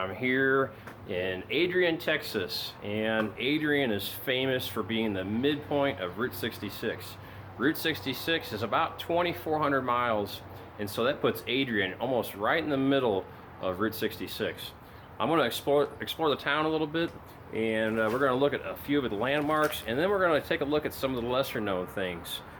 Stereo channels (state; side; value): identical; both; correlation 1.00